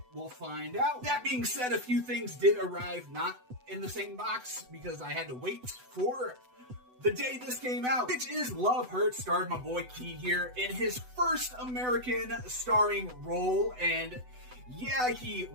We'll find out. That being said, a few things did arrive not in the same box because I had to wait for the day this came out, which is Love Hurts, starred my boy Key here in his first American starring role. And yeah, he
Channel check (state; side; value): late; left; 8.0 ms